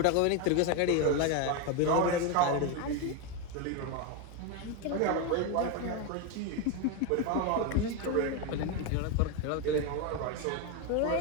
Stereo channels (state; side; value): different; both; correlation 0.02